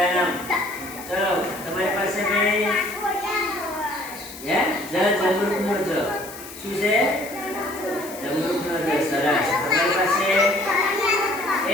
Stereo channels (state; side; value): noise; left; hiss, 15 dB below the sound